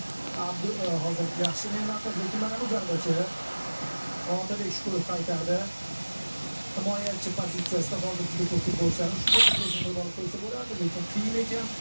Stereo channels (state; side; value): inverted; both; correlation -1.00